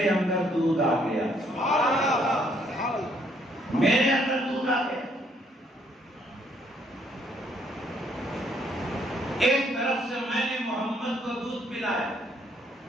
اندر دودھ آ گیا، میرے اندر دودھ آ گیا۔ ایک طرف سے میں نے محمد کو دودھ پلایا،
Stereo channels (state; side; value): normal; both; correlation 0.68